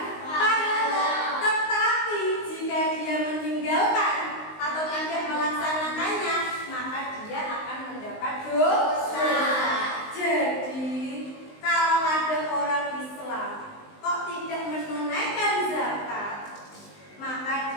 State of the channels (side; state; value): right; late; 19 ms